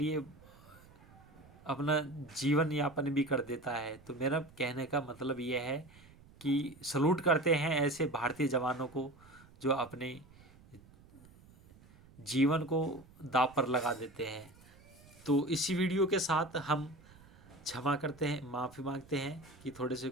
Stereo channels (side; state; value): right; noise; rumble, 24 dB below the sound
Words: अपना जीवन यापन भी कर देता है। तो मेरा कहने का मतलब यह है कि सलूट करते हैं ऐसे भारतीय जवानों को जो अपने जीवन को दांव पर लगा देते हैं। तो इसी वीडियो के साथ हम क्षमा करते हैं, माफ़ी मांगते हैं कि थोड़े से